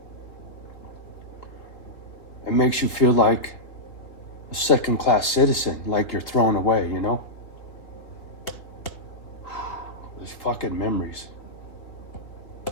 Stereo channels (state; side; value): late; right; 3.4 ms